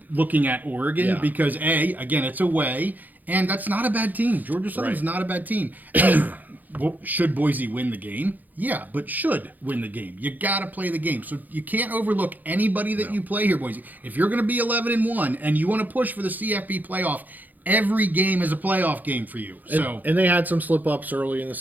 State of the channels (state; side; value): late; left; 0.083 ms